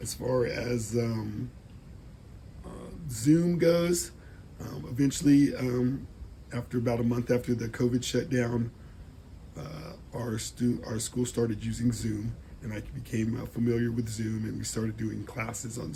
As far as Zoom goes, eventually, after about a month after the COVID shutdown, our school started using Zoom, and I became familiar with Zoom, and we started doing classes on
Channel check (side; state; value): both; identical; correlation 1.00